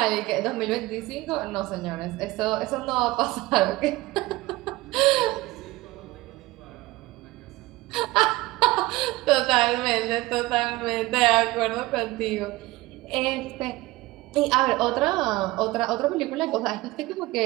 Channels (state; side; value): quieter; left; 19.8 dB